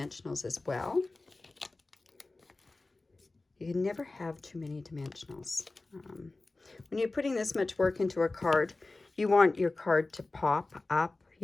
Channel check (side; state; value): right; quieter; 3.2 dB